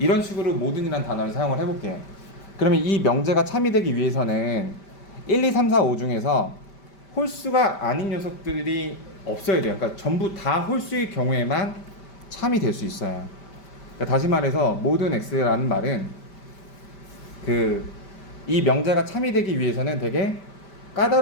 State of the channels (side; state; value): right; late; 5.1 ms